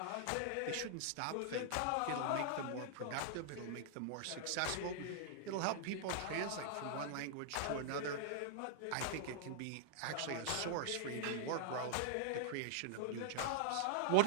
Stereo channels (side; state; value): both; different; correlation -0.01